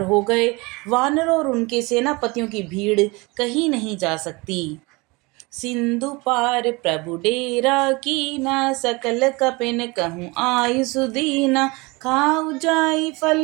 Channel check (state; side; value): quieter; left; 25.3 dB